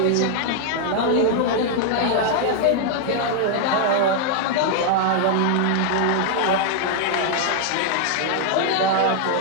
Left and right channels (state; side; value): different; both; correlation 0.00